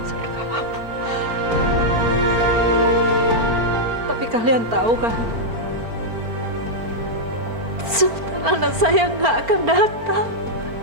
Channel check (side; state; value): left; late; 4.4 ms